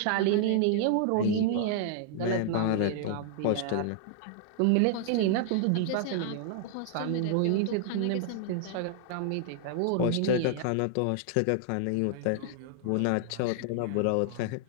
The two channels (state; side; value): different; both; correlation -0.01